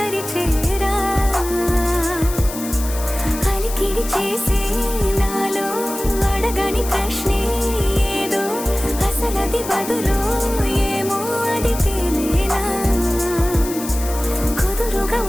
అలికిడి చేసే నాలో అడగని ప్రశ్నే ఏదో, అసలది బదులు ఏమో అది తేలేనా. కుదురుగా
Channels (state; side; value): noise; left; hiss, 10 dB below the sound